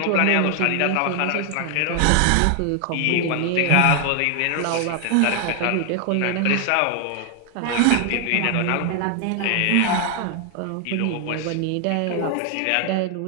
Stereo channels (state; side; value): different; both; correlation 0.00